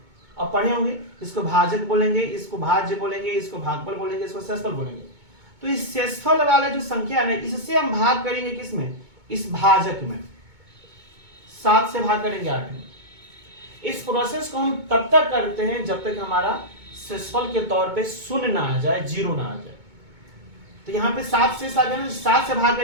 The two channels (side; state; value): left; late; 2.2 ms